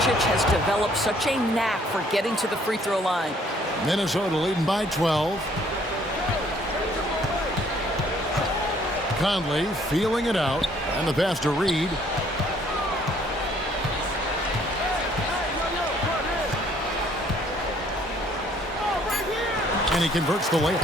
has developed such a knack for getting to the free throw line. Minnesota leading by 12. Conley feeling it out. And the pass to Reed. And he converts the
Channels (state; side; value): normal; both; correlation 0.62